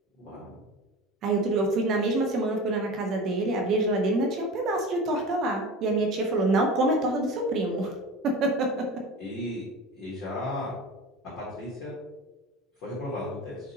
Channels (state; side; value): normal; both; correlation 0.33